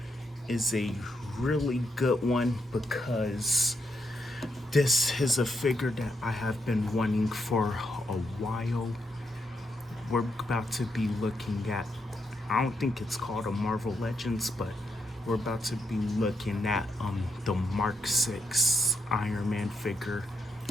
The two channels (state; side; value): normal; both; correlation 0.80